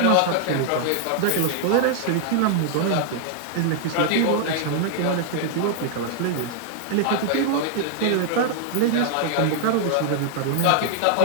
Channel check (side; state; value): both; different; correlation -0.01